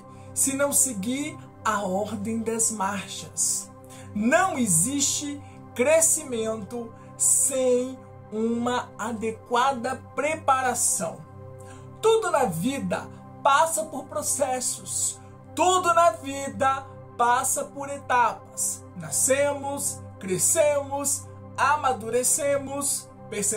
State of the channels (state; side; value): identical; both; correlation 1.00